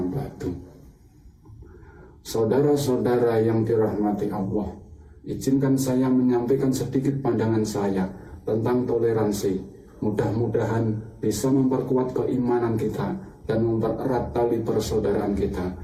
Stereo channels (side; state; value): both; identical; correlation 1.00